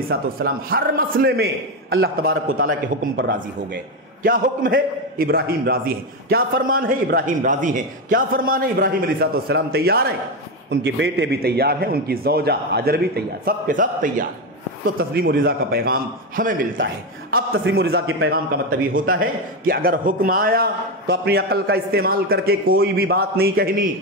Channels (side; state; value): both; normal; correlation 0.12